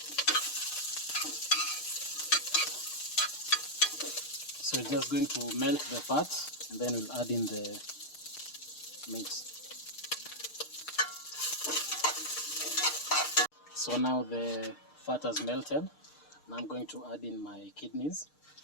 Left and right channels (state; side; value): late; right; 6.6 ms